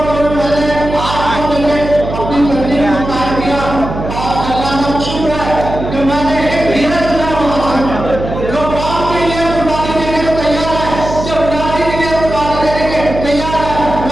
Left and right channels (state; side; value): noise; right; hum, 7 dB below the sound